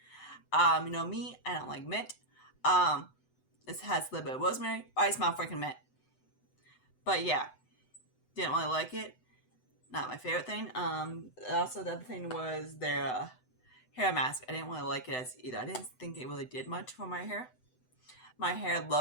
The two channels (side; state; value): right; late; 7.9 ms